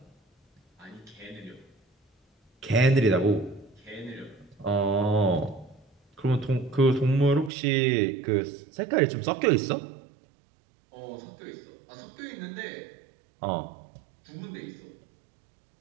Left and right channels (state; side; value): drops out; left; at 7.5 s